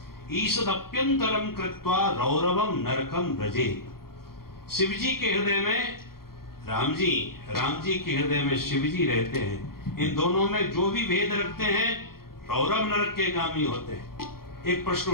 ईषदप्यंतरम कृत्वा रौरवम नरकम व्रजे। शिव जी के हृदय में राम जी के हृदय में शिव जी रहते हैं। इन दोनों में जो भी भेद रखते हैं रौरव नरक के गामी होते हैं। एक प्रश्न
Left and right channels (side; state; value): right; late; 0.94 ms